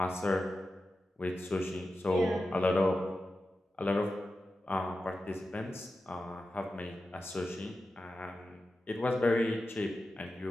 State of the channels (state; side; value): normal; both; correlation 0.92